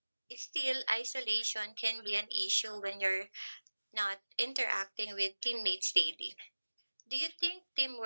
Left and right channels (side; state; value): both; inverted; correlation -1.00